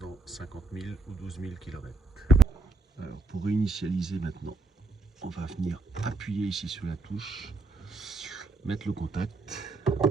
50 000 ou 12 000 km. Alors pour réinitialiser maintenant, on va venir appuyer ici sur la touche, mettre le contact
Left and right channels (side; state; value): left; quieter; 3.4 dB